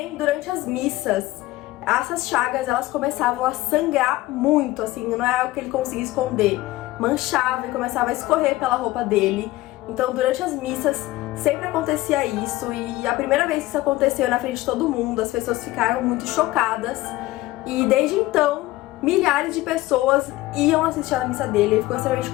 durante as missas essas chagas elas começavam a sangrar muito, assim, não é algo que ele conseguia esconder, manchava e começava a escorrer pela roupa dele. Então durante as missas sempre acontecia isso, e a primeira vez que isso aconteceu na frente de todo mundo, as pessoas ficaram muito chocadas, e desde então milhares de pessoas iam assistir a missa dele. Ele ficou extremamente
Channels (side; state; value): right; quieter; 17.9 dB